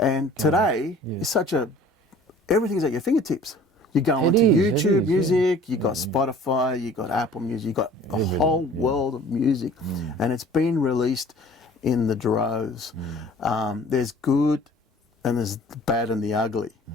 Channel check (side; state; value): both; normal; correlation 0.49